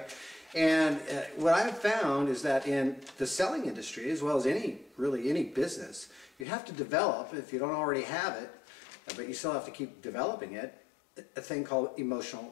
And what I've found is that in the selling industry, as well as really any business, you have to develop, if you don't already have it, but you still have to keep developing it, a thing called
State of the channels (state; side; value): drops out; right; at 6.5 s